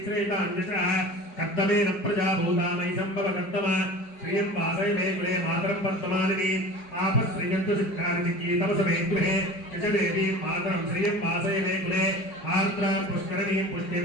कर्दमेन प्रजाभूता मयि सम्भव कर्दम श्रियं वासय मे गृहे मातरं पद्ममालिनी आपश्रियन्तु सिद्धानि चिकीतमस मे गृहे यश देवीं मातरं श्रियं वासय मे गृहे आर्द्रां पुष्करणीं पुष्टिं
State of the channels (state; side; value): late; right; 4.9 ms